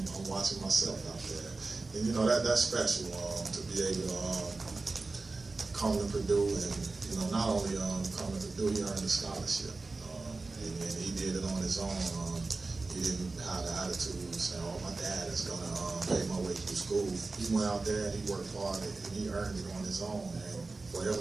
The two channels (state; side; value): quieter; left; 3.6 dB